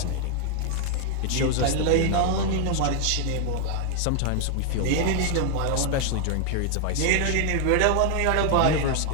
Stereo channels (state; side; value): different; both; correlation 0.00